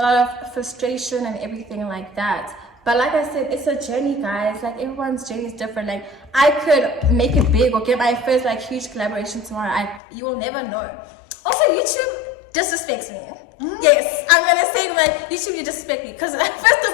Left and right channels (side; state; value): right; drops out; at 10.0 s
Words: lot of frustration and everything like that. But like I said, it's a journey, guys. Like everyone's journey is different. Like I could make it big or get my first like huge collaboration tomorrow. You will never know. Also, YouTube disrespects me. Yes, I'm gonna say like YouTube, you disrespect me, because first